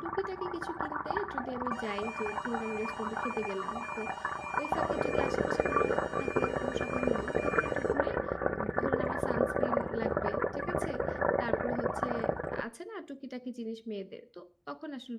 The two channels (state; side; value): identical; both; correlation 1.00